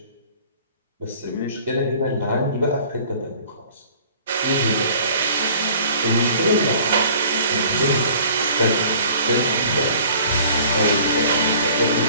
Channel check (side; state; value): both; inverted; correlation -0.51